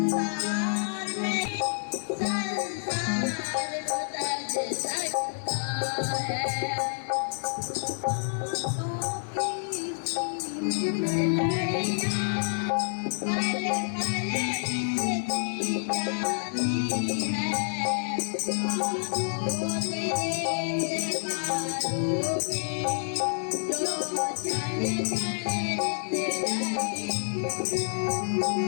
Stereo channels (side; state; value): right; silent; digital silence